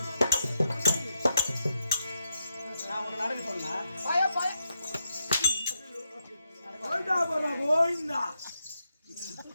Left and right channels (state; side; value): inverted; both; correlation -0.82